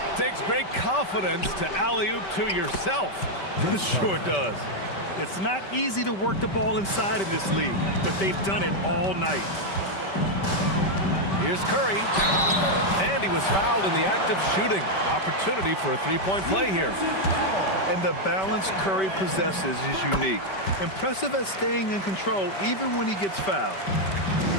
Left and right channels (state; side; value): late; right; 5.2 ms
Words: Takes great confidence to alley-oop to yourself. It sure does. It's not easy to work the ball inside of this league, but they've done it all night. Here's Curry, and he was fouled in the act of shooting. Opportunity for a 3-point play here. And the balance Curry possesses is unique. Impressive at staying in control even when he gets fouled.